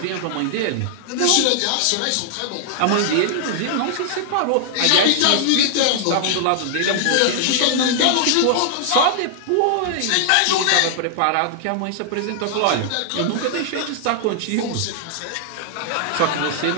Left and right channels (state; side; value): different; both; correlation -0.01